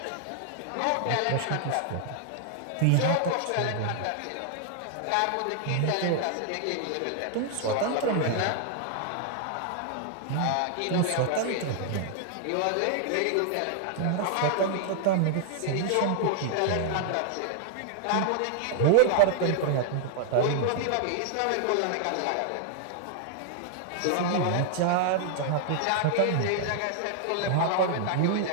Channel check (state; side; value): different; both; correlation 0.00